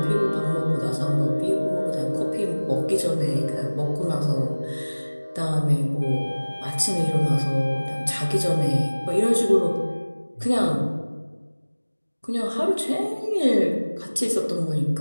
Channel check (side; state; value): both; inverted; correlation -1.00